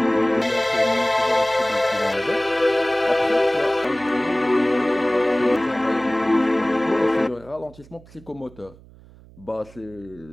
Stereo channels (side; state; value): right; noise; hum, 23 dB below the sound